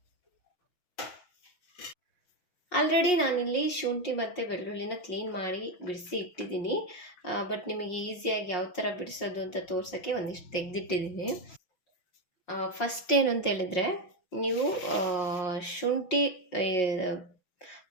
ಆಲ್ರೆಡಿ ನಾನಿಲ್ಲಿ ಶುಂಠಿ ಮತ್ತು ಬೆಳ್ಳುಳ್ಳಿನ ಕ್ಲೀನ್ ಮಾಡಿ ಬಿಡಿಸಿ ಇಟ್ಟಿದ್ದೀನಿ. ಬಟ್ ನಿಮಗೆ ಈಸಿಯಾಗಿ ಯಾವ ಥರ ಬಿಡಿಸೋದು ಅಂತ ತೋರ್ಸೋಕ್ಕೆ ಒಂದಿಷ್ಟು ತೆಗೆದಿಟ್ಟಿದ್ದೀನಿ. ಫಸ್ಟ್ ಏನು ಅಂತ ಹೇಳಿದರೆ, ನೀವು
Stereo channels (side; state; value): right; late; 5.5 ms